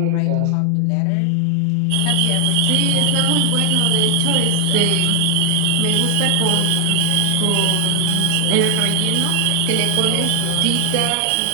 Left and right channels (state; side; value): different; both; correlation 0.00